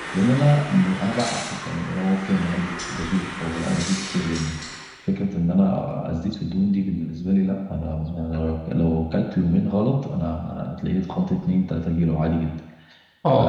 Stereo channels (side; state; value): both; identical; correlation 1.00